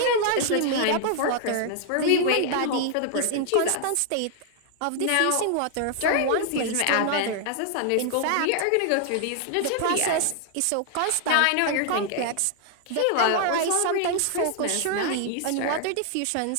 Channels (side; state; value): both; different; correlation 0.00